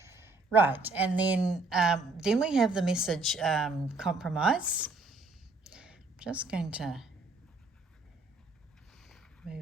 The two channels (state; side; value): quieter; left; 3.3 dB